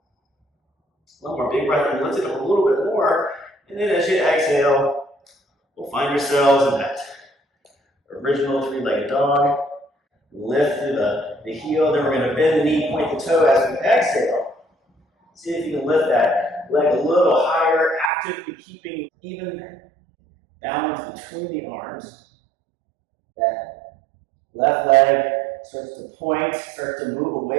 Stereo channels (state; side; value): drops out; left; at 18.1 s